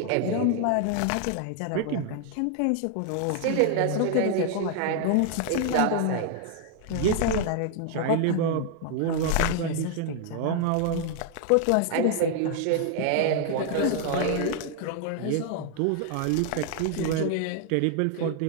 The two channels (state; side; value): different; both; correlation 0.00